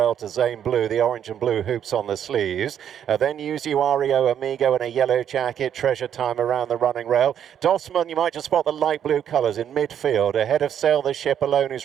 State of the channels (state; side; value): quieter; left; 9.3 dB